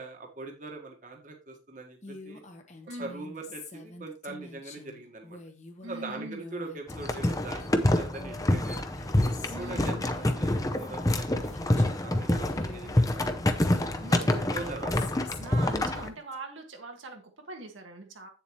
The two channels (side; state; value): both; normal; correlation 0.81